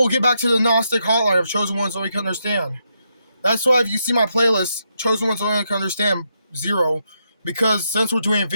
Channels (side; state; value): both; inverted; correlation -0.81